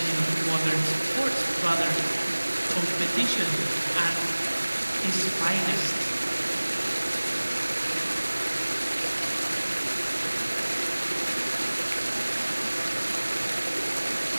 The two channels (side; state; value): both; inverted; correlation -1.00